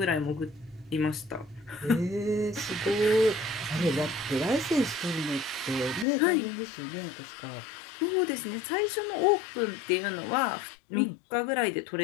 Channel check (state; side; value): drops out; right; at 6.1 s